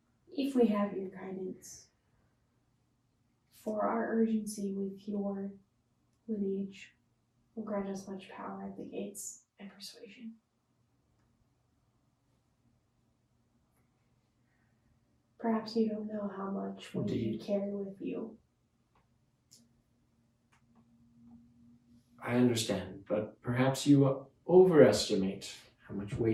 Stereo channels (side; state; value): both; identical; correlation 1.00